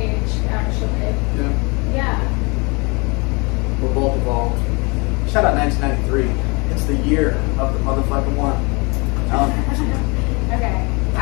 actually. Yeah. Yeah. We're both evolved. Shout out 1993. It's the year of the motherfucking one. Okay.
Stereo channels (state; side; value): quieter; right; 29.3 dB